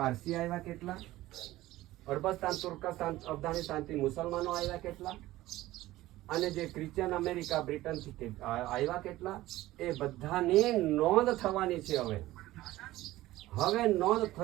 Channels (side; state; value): left; quieter; 16.5 dB